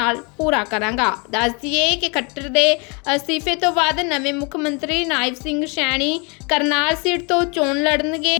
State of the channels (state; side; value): quieter; right; 30.6 dB